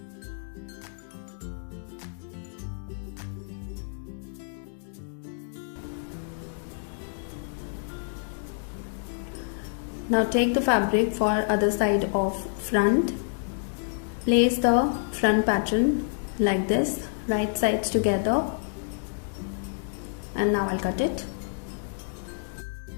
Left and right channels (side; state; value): right; silent; digital silence